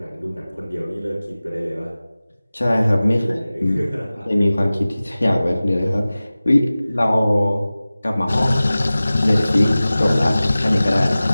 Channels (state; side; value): inverted; both; correlation -0.97